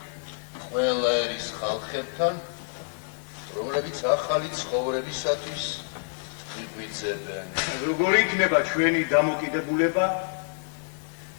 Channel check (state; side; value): silent; right; digital silence